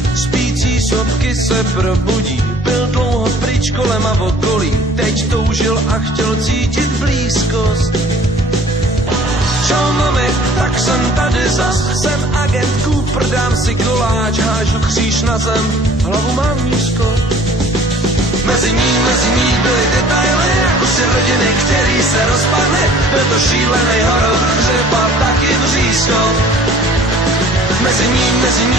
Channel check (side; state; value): both; normal; correlation 0.52